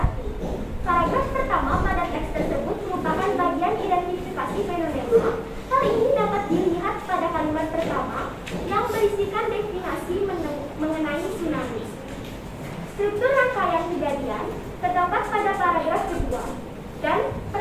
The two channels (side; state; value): both; identical; correlation 1.00